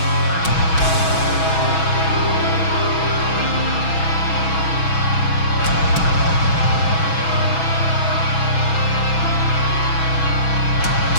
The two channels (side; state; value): right; late; 6.2 ms